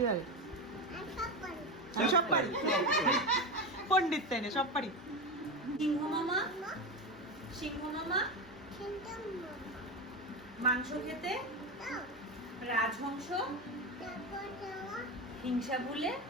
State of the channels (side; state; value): both; normal; correlation 0.18